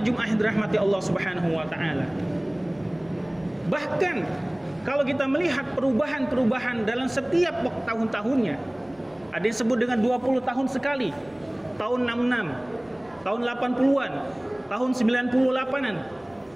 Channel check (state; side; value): noise; right; rumble, 30 dB below the sound